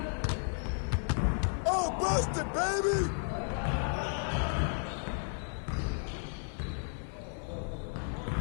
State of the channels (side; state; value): right; silent; 56 dB below the other